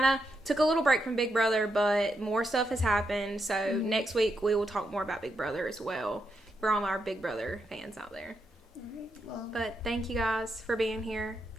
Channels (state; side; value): normal; both; correlation 0.82